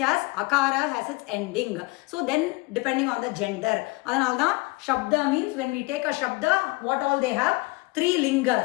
has akara has its ending. So then depending on the gender, அதனால தான் shabda means when we take a shabda, what all they have? 3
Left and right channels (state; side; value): quieter; right; 24.4 dB